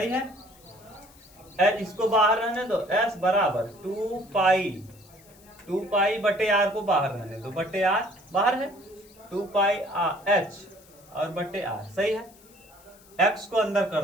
है। इसको बाहर रहने दो, एस बराबर 2 पाई बटे आर को बाहर रहने दो, बटे आर बाहर है, 2 पाई एच और बटे आर, सही है। एक्स को अंदर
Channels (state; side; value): noise; left; hiss, 26 dB below the sound